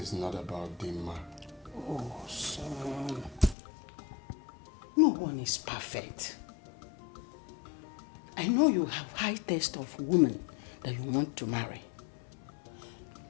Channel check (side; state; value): right; drops out; at 3.6 s